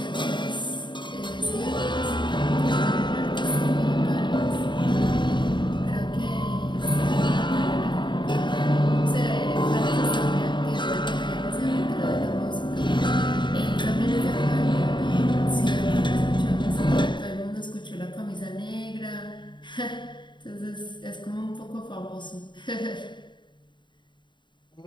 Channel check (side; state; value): right; late; 0.23 ms